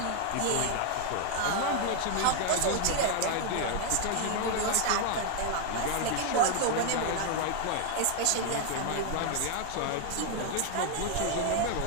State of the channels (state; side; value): different; both; correlation 0.00